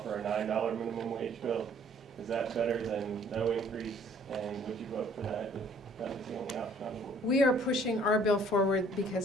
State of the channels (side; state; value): both; normal; correlation 0.58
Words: a $9 minimum wage bill. Is that better than no increase? And would you vote for that if that was the only option on the board? We are pushing our bill forward